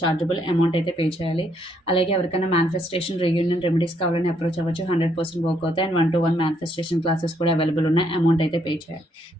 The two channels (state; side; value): normal; both; correlation 0.72